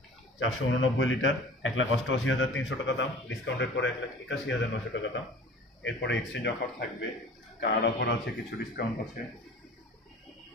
489 লিটার, 1,88,300 টাকা দাম, ডিসকাউন্টের পরে 1,81,900 টাকা দাম। এরপরে এক্সচেঞ্জ অফার থাকবে, কার্ড অফার আছে, কিছু ডিসকাউন্ট আছে।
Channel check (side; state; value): both; normal; correlation 0.43